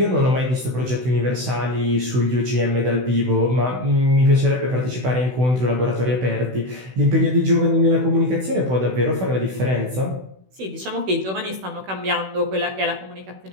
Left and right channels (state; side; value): late; left; 16 ms